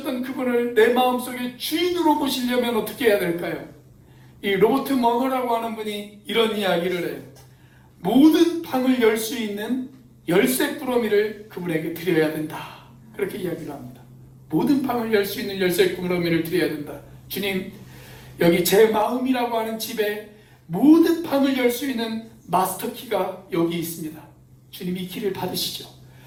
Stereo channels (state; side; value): identical; both; correlation 1.00